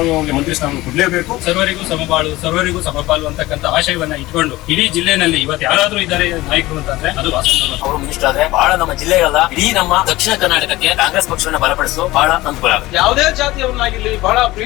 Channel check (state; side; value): quieter; right; 18.5 dB